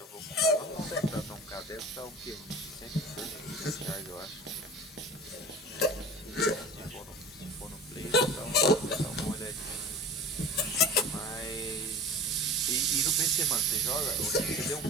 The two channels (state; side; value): normal; both; correlation 0.37